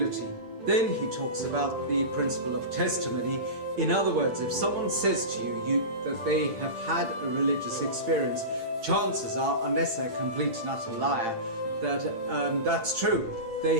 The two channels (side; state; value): left; late; 8.8 ms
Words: Then he talks about the principle of testimony. In other words, if someone says to you that they have had a religious experience, chances are, unless they're a complete and utter liar, that that's true.